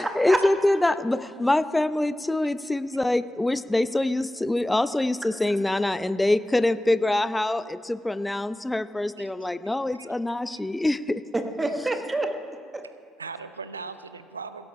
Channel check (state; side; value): normal; both; correlation 0.95